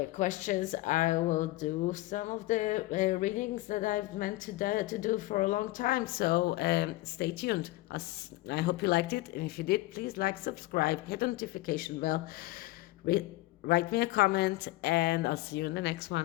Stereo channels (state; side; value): quieter; right; 18.8 dB